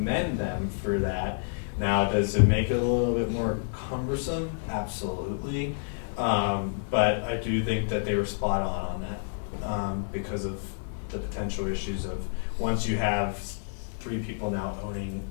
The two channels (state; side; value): silent; right; digital silence